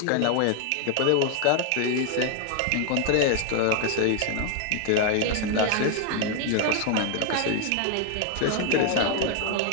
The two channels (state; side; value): different; both; correlation 0.01